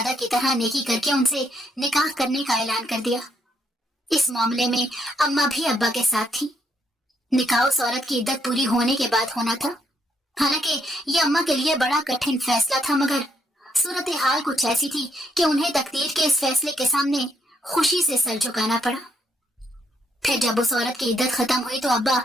की तरह नेकी करके उनसे निकाह करने का ऐलान कर दिया। इस मामले में अम्मा भी अब्बा के साथ थी। निकाह उस औरत की इद्दत पूरी होने के बाद होना था। हालांकि ये अम्मा के लिए बड़ा कठिन फैसला था, मगर सूरत हाल कुछ ऐसी थी कि उन्हें तकदीर के इस फैसले के सामने खुशी से सर झुकाना पड़ा। फिर जब उस औरत की इद्दत खत्म हुई तो अब्बा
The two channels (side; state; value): both; normal; correlation 0.74